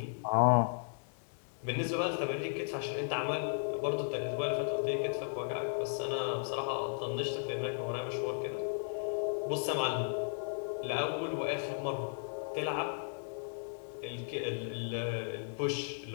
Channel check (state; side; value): silent; right; digital silence